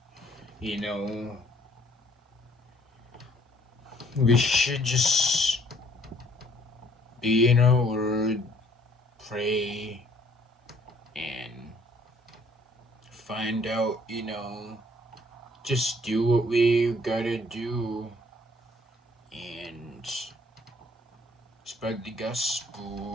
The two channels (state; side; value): normal; both; correlation 0.61